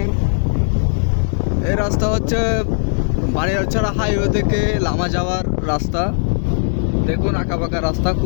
এই রাস্তা হচ্ছে বানিয়ারছড়া হাইওয়ে থেকে লামা যাওয়ার রাস্তা। দেখুন আঁকাবাঁকা রাস্তা,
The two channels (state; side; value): silent; right; digital silence